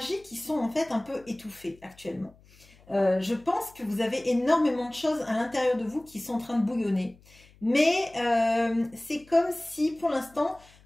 qui sont en fait un peu étouffées actuellement. Je pense que vous avez énormément de choses à l'intérieur de vous qui sont en train de bouillonner. Mais c'est comme si, pour l'instant,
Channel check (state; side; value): noise; left; hum, 27 dB below the sound